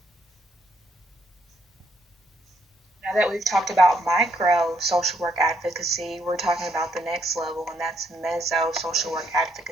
Now that we've talked about micro social work advocacy, we're talking about the next level, and that's meso social work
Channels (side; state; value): both; normal; correlation 0.73